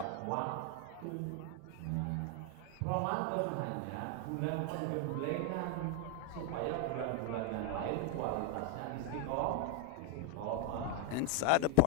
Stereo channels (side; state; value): both; different; correlation 0.00